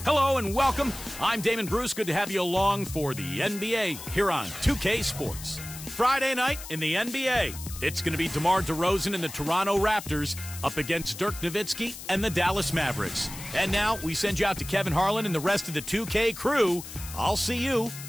Hello and welcome. I'm Damon Bruce. Good to have you along for the NBA here on 2K Sports. Friday night in the NBA, it's going to be DeMar DeRozan and the Toronto Raptors up against Dirk Nowitzki and the Dallas Mavericks. And now we send you out to Kevin Harlan and the rest of the 2K crew. I'll see you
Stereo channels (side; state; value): left; noise; hiss, 12 dB below the sound